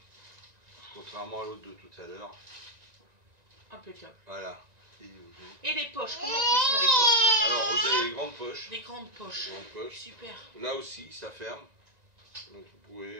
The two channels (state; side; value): late; left; 1.9 ms